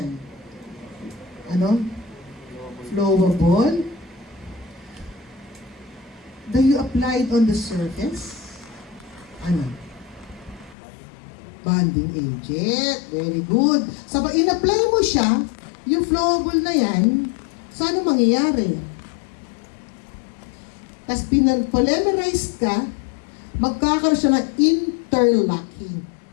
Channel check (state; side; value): drops out; right; at 10.8 s